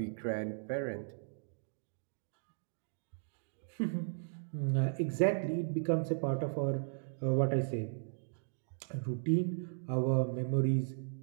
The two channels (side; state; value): left; silent; digital silence